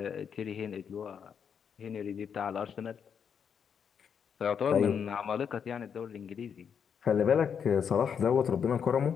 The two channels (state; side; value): quieter; right; 7.3 dB